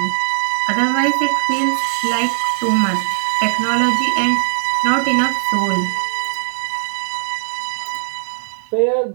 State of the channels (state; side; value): silent; left; 67 dB below the other